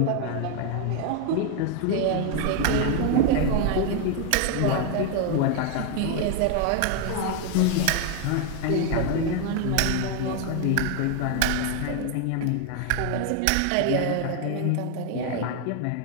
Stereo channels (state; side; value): different; both; correlation 0.01